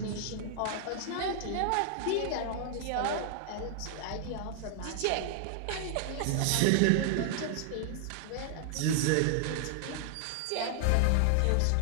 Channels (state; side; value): different; both; correlation 0.00